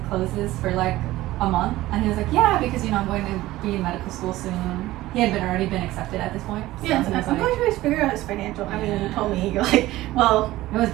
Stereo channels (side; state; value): left; quieter; 16.8 dB